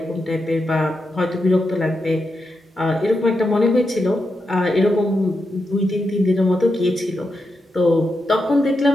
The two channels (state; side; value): normal; both; correlation 0.86